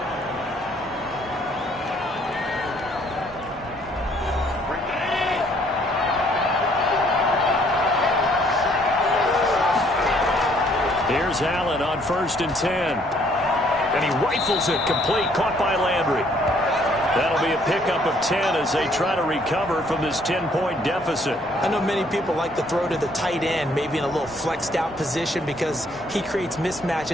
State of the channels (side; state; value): both; normal; correlation 0.64